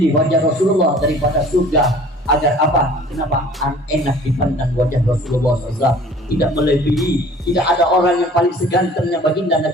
wajah Rasulullah daripada surga. Agar apa? Kenapa? Enak dipandang wajah Rasulullah SAW. Tidak melebihi, tidak ada orang yang paling segantengnya baginda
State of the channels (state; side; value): normal; both; correlation 0.49